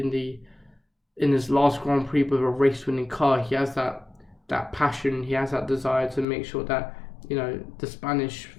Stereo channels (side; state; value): right; drops out; at 6.2 s